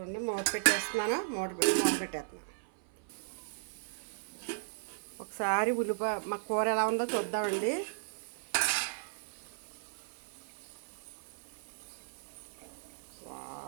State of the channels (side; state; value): left; silent; 54 dB below the other